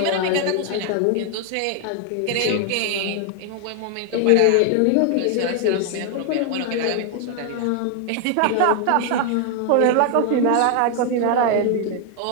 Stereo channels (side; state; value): both; different; correlation 0.00